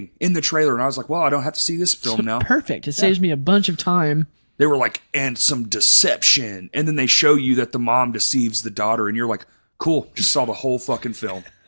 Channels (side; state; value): both; inverted; correlation -1.00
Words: in the trailer, and I was like, well, I don't have to see this film now. Perfect. It saves me a bunch of time. They were like, and some deception, and then they show you that the mom deceives the daughter, and you're like, cool, just saw the whole fucking film.